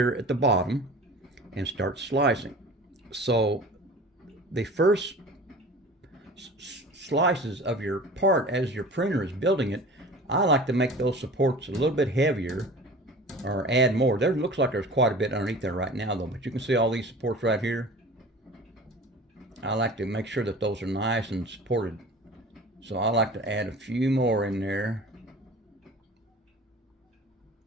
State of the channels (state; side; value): normal; both; correlation 0.41